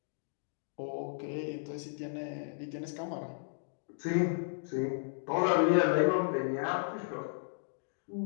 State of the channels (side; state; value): right; silent; digital silence